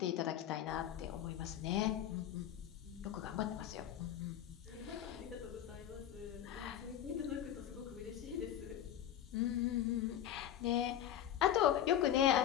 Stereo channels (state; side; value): quieter; right; 10.9 dB